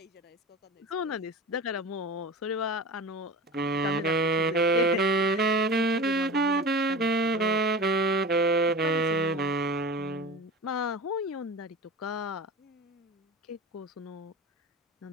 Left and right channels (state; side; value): normal; both; correlation 0.32